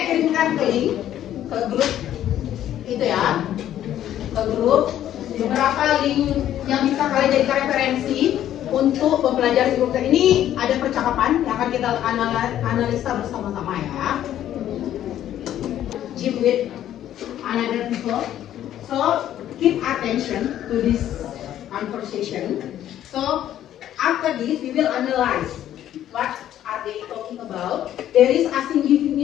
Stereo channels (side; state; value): right; quieter; 11.6 dB